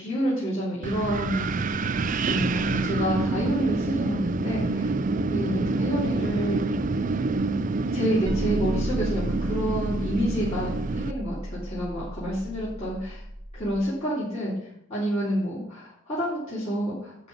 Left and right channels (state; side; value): normal; both; correlation 0.67